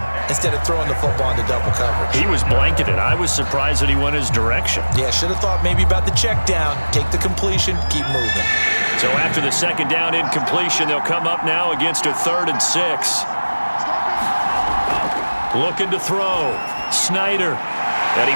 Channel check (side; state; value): both; inverted; correlation -1.00